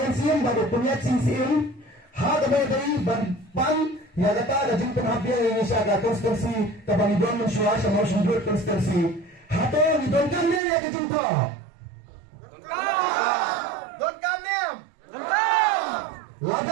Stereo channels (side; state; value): left; drops out; at 10.6 s